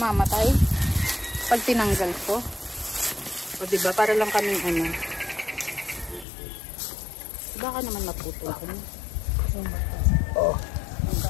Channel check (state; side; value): drops out; right; at 6.2 s